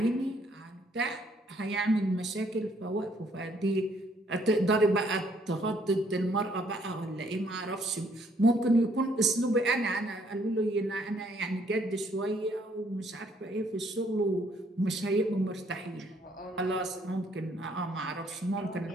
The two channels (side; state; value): both; normal; correlation 0.66